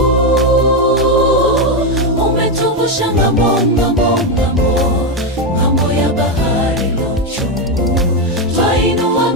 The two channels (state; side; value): normal; both; correlation 0.07